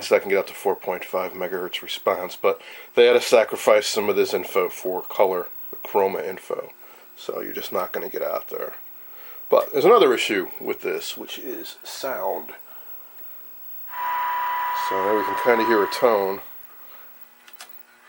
so that can get up to 4.5 megahertz response, but they had to sacrifice some of this info for color, the chroma info. So you're just not going to get out there. But there's another issue with this, which is sound. So now we can kind of hear a tone.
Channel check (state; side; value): identical; both; correlation 1.00